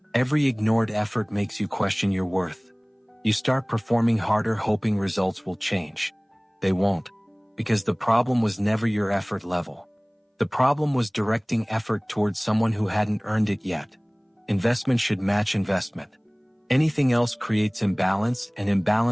Every ignored effort makes you question your worth. You start performing harder hoping results will change. They won't, because the problem was never your effort level. The problem was directing effort towards someone who hadn't earned it yet. Investment should match investment. Anything else creates imbalance, and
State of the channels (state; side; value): identical; both; correlation 1.00